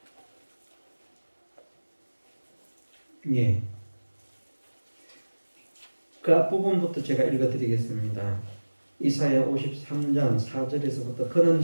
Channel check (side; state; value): both; inverted; correlation -1.00